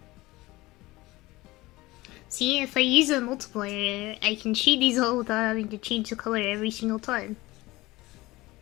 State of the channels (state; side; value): quieter; right; 19.8 dB